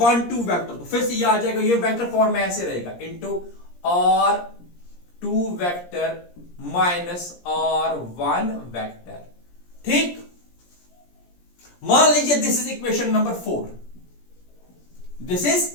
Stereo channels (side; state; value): right; late; 17 ms